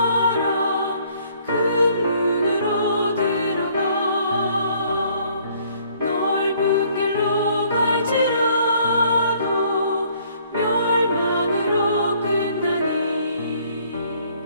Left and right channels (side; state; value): both; inverted; correlation -0.62